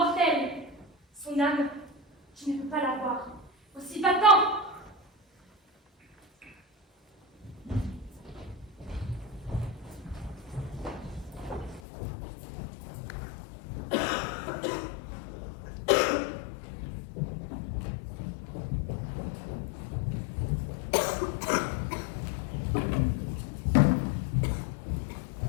Son âme, tu ne peux pas l'avoir. Aussi va-t'en!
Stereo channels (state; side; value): drops out; right; at 11.8 s